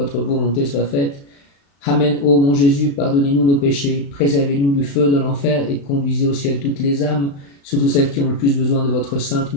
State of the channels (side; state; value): right; late; 35 ms